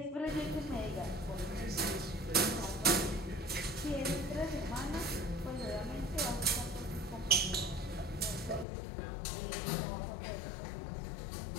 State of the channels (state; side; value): drops out; right; at 8.7 s